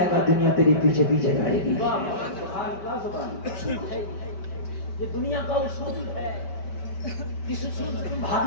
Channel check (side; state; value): right; late; 5.2 ms